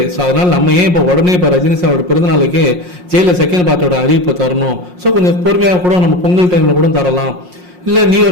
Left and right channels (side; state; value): left; late; 5.6 ms